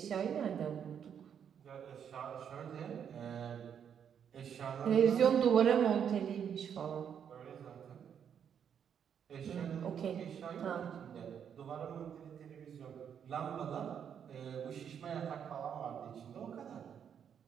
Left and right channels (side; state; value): left; quieter; 8.2 dB